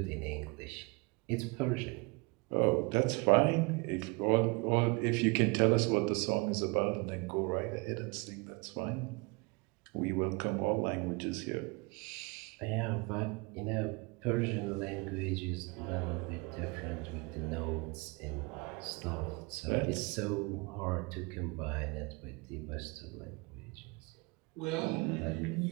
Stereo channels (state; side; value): quieter; left; 28.5 dB